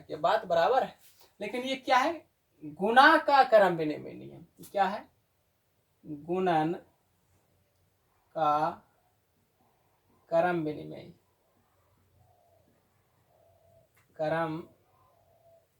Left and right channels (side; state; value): both; identical; correlation 1.00